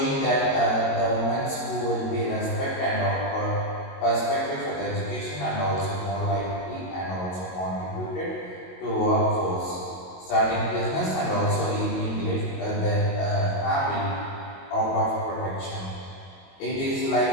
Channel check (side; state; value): right; late; 22 ms